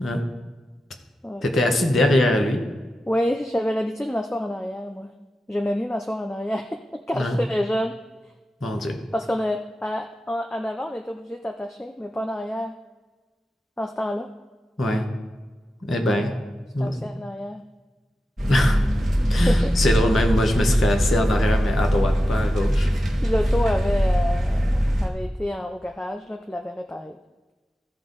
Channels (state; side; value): normal; both; correlation 0.92